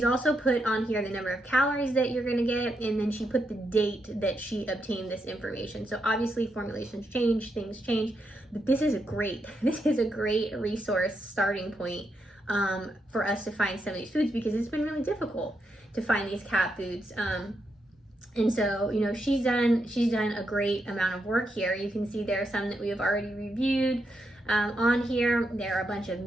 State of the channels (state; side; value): normal; both; correlation 0.82